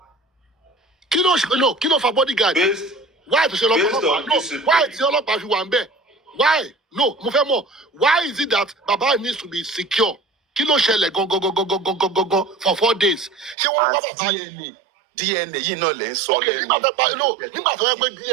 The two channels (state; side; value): drops out; left; at 13.6 s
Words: Kilo for bodyguard. Why to say no? Why is your love you want Why? No, mo fẹ́ mọ̀. Why is it that Baba needs to be secure? Kilo ṣẹlẹ̀ go for 4 days. Ṣé wọ́n bá bàbá DNA yìí náà lè ń sọ okay, lẹ́nu. nígbà tó yẹ pé